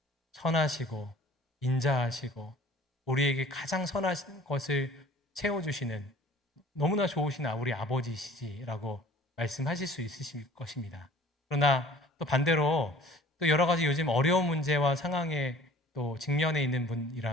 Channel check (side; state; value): both; normal; correlation 0.49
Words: 선하시고 인자하시고 우리에게 가장 선한 것을 채워주시는 너무나 좋으신 우리 아버지시지라고 말씀하실 수 있으실 것입니다. 그러나 또 반대로 또 여러 가지 요즘 어려운 문제와 상황에 또 직면해 있는